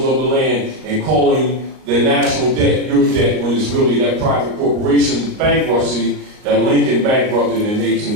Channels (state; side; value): late; left; 38 ms